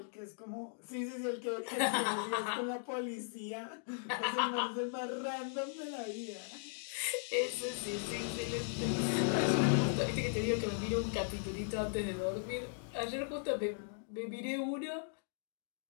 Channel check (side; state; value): right; silent; digital silence